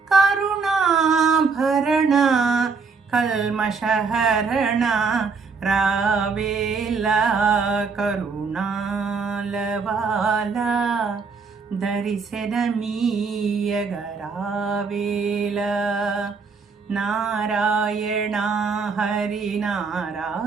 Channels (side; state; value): left; quieter; 5.0 dB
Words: కరుణాభరణ కల్మషహరణ రావేలా కరుణాల బాల దర్శనమీయగరావేలా నారాయణ హరి